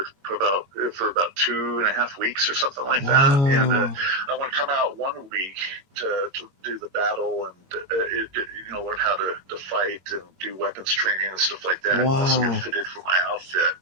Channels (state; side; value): late; left; 22 ms